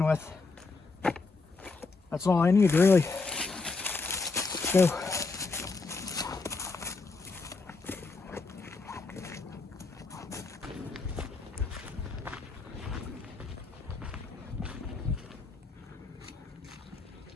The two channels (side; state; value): right; quieter; 4.0 dB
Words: with. That's all I need, really. Let's go.